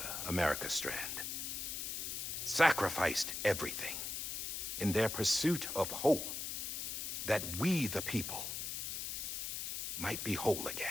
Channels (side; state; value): left; noise; hiss, 3 dB below the sound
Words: America Strand, sacrificed everything in their pursuit of hope that we, the people, might be whole